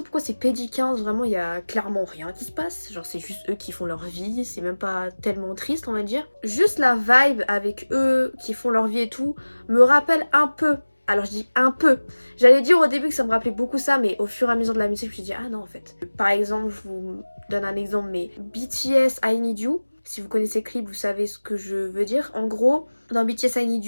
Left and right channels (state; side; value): inverted; both; correlation -1.00